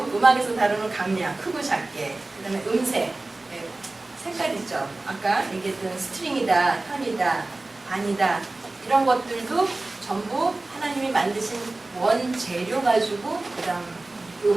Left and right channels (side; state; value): left; quieter; 3.0 dB